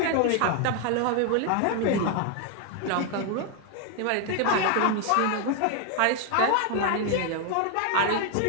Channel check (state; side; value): different; both; correlation 0.01